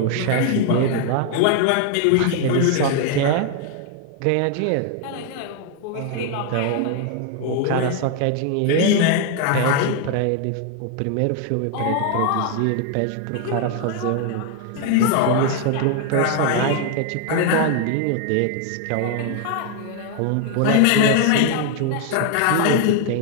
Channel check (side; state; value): both; different; correlation 0.00